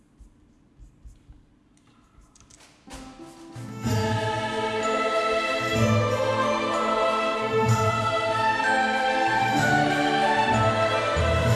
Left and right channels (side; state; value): both; identical; correlation 1.00